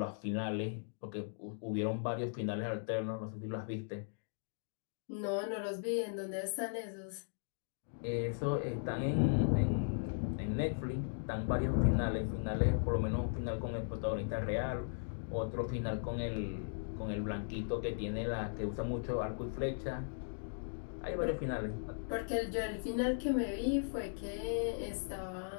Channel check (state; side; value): silent; right; digital silence